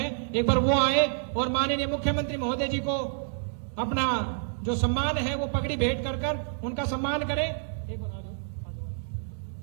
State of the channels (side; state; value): left; silent; digital silence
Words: एक बार वो आए और माननीय मुख्यमंत्री महोदय जी को अपना जो सम्मान है वो पगड़ी भेंट कर उनका सम्मान करें। एक बार आ जाओ, आ जाओ,